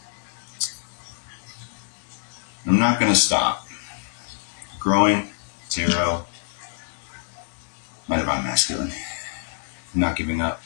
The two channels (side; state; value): right; silent; digital silence